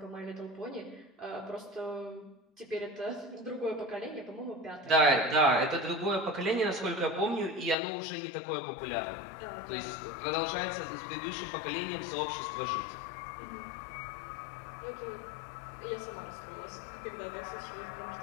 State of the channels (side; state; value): right; drops out; at 7.8 s